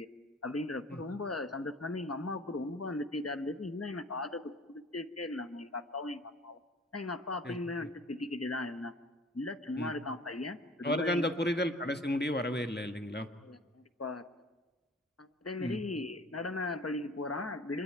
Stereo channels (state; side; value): normal; both; correlation 0.48